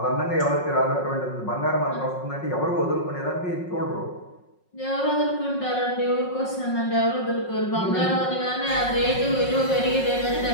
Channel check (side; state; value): right; late; 5.5 ms